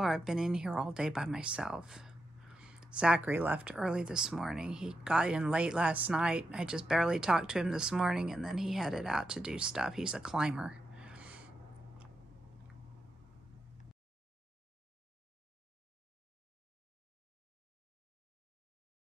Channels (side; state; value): both; normal; correlation 0.87